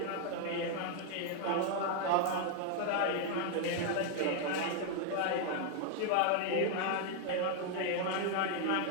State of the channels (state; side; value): different; both; correlation 0.00